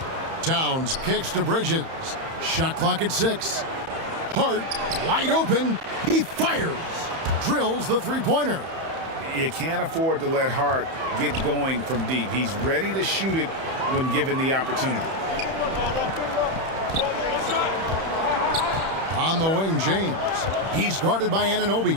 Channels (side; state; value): left; late; 31 ms